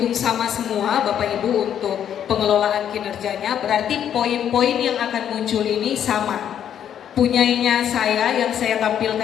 sama semua Bapak Ibu untuk pengelolaan kinerjanya, berarti poin-poin yang akan muncul ini sama. Punyanya saya yang saya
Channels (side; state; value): right; quieter; 9.5 dB